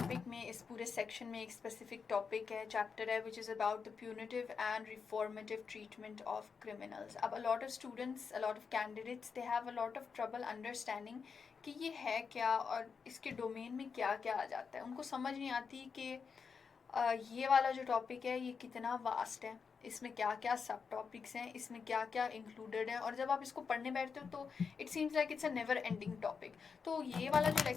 में इस पूरे सेक्शन में एक स्पेसिफिक टॉपिक है, चैप्टर है, which is about the punitive and reformative treatment of criminals. अब a lot of students, a lot of candidates, they have a lot of trouble understanding कि ये है क्या और इसके डोमेन में क्या क्या आ जाता है. उनको समझ नहीं आती कि ये वाला जो टॉपिक है ये कितना वास्ट है, इसमें क्या क्या सब टॉपिक्स हैं, इसमें क्या क्या इंक्लूडेड है, और जब आप इसको पढ़ने बैठते हो तो it seems like it's a never ending topic. तो ये वाला जो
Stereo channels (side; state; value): right; quieter; 5.7 dB